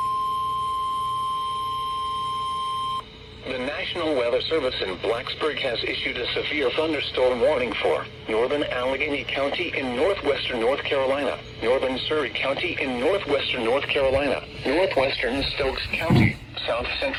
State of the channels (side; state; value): both; identical; correlation 1.00